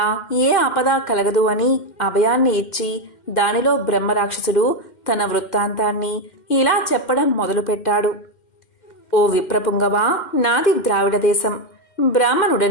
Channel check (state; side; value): late; right; 2.1 ms